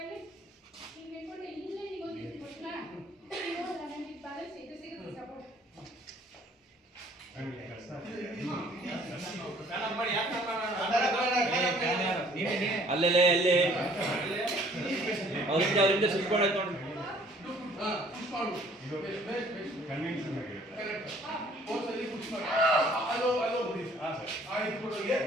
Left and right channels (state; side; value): normal; both; correlation 0.57